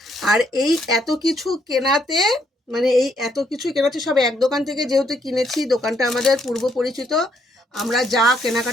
আর এই এত কিছু কেনাতে, মানে এই এত কিছু কেনাতে সব এক দোকান থেকে যেহেতু কিনেছি, দোকানটা আমাদের পূর্ব পরিচিত, আমরা যা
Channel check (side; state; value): both; normal; correlation 0.73